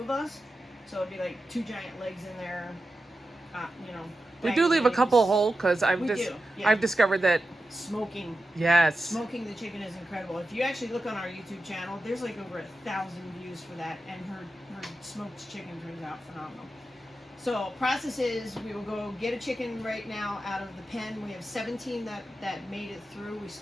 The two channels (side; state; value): both; normal; correlation 0.91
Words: of us. So it'd be like 2 giant legs in there, We do leave a couple whole because I've discovered that smoking the chicken is incredible. If you actually look on our YouTube channel, there's like over 1,000 views for that, and her smoked chicken turns out phenomenal. So process is, we will go get a chicken right now out of the pen. We have 17 that made it through. We